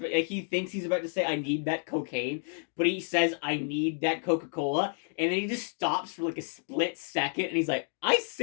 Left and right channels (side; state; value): right; silent; 58 dB below the other